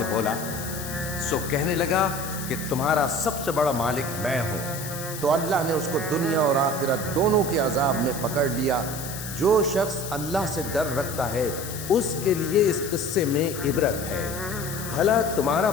بولا، سو کہنے لگا کہ تمہارا سب سے بڑا مالک میں ہوں۔ تو اللہ نے اس کو دنیا اور آخرت دونوں کے عذاب میں پکڑ لیا۔ جو شخص اللہ سے ڈر رکھتا ہے اس کے لیے اس قصے میں عبرت ہے۔ بھلا تمہارا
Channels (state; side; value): noise; left; hiss, 9 dB below the sound